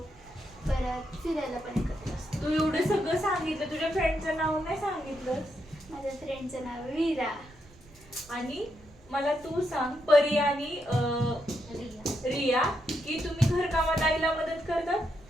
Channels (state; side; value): normal; both; correlation 0.81